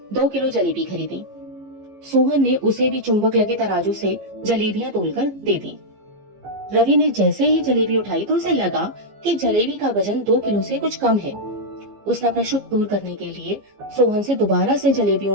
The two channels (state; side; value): late; left; 15 ms